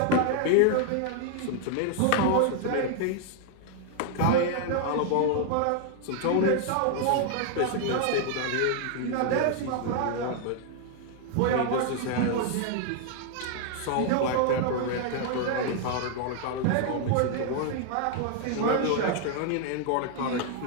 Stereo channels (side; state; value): both; different; correlation 0.00